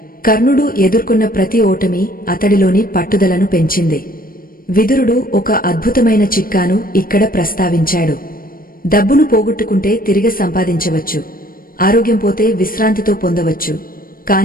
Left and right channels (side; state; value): right; late; 0.41 ms